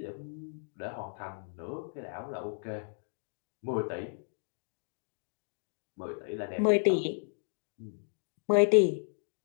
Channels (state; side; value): silent; right; digital silence